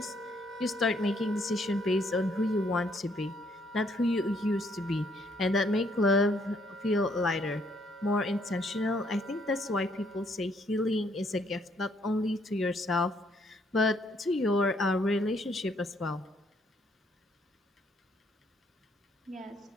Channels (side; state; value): both; normal; correlation 0.69